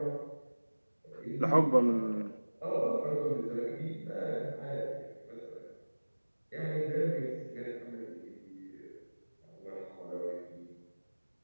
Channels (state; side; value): inverted; both; correlation -1.00